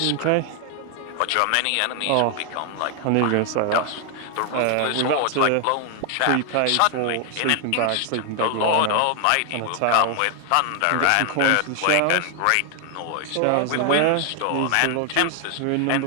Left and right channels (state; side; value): different; both; correlation 0.00